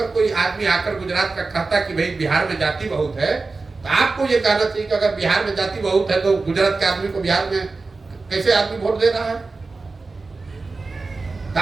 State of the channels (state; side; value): quieter; left; 3.8 dB